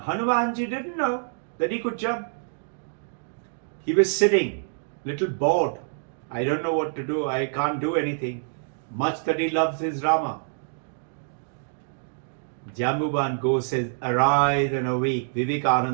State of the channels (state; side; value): silent; left; digital silence